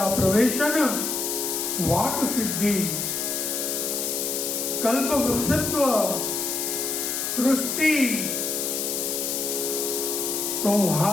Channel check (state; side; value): noise; left; hiss, 1 dB below the sound